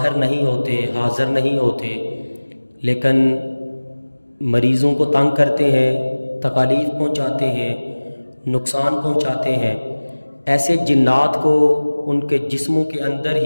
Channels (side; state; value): both; inverted; correlation -1.00